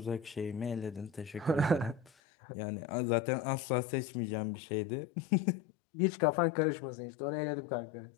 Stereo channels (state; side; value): drops out; right; at 2.1 s